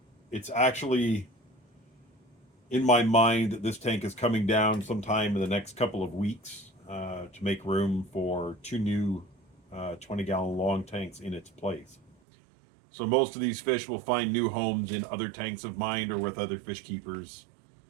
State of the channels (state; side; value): drops out; left; at 12.2 s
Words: It's actually in my mind that this tank is coming down sometime in the next couple of weeks to make room for two new 20-gallon long tanks in its place. So most of these fish will find new homes in other tanks of mine or with other fish keepers.